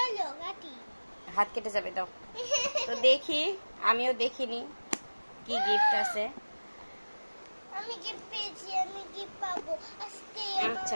কাটি। হাত কেটে যাবে, দাও। তো দেখি, আমিও দেখিনি কি গিফট আছে। আমি গিফট পেয়েছি, আমি গিফট পাবো আজকে। আচ্ছা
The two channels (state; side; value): inverted; both; correlation -1.00